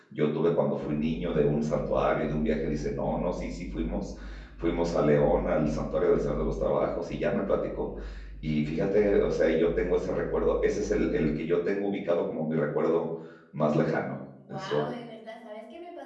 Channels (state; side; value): identical; both; correlation 1.00